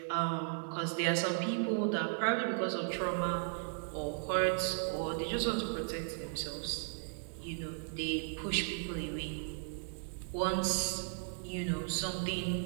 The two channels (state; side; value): silent; left; digital silence